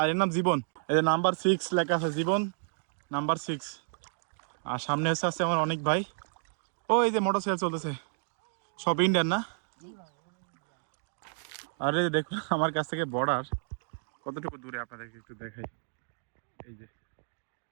এর নাম জীবন। এই যে নাম্বার 6 লেখা আছে, জীবন নাম্বার 6। আর সামনে এসে আছে আমার অনেক ভাই। ও এই যে মোটরসাইকেল চলতেছে, সব ইন্ডিয়ান না? আরে দেখুন আমার কাছ থেকে বর্ডার কতটুকু দূরে, আপনাদেরকে একটু দেখাই। এই যে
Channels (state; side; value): silent; left; digital silence